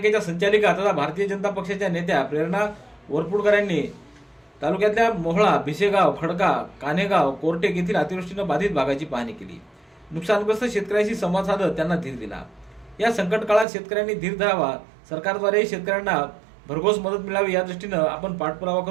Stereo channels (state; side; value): drops out; left; at 13.7 s